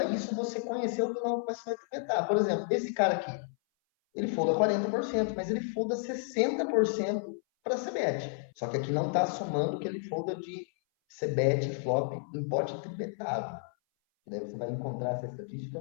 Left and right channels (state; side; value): silent; right; 57 dB below the other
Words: isso você conhecer o vilão que você vai tribetar. Por exemplo, esse cara aqui, ele folda 40%, mas ele folda 60% para CBET. Só que aqui não está somando que ele folda de CBET flop em pote tribetado. Daí você vai encontrar essa estatística